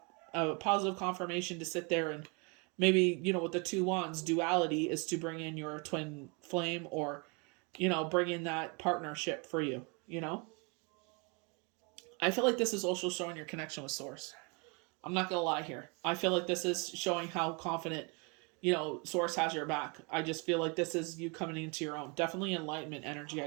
positive confirmation to sit there and maybe with the 2 wands, duality is to bring in your twin flame, or bring in that partnership for you. I feel like this is also showing your connection with Source. I'm not gonna lie here. I feel like this is showing how confident, Source has your back. I just feel like this is you coming into your own. Definitely enlightenment energy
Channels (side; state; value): left; quieter; 31.8 dB